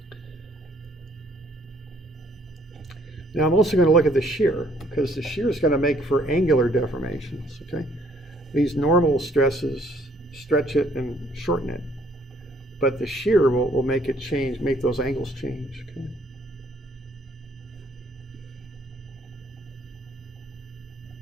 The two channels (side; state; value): both; normal; correlation 0.64